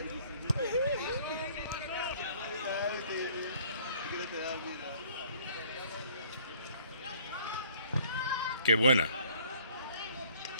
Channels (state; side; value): inverted; both; correlation -0.57